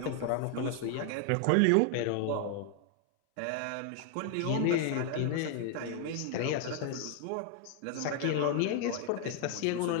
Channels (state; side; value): different; both; correlation 0.00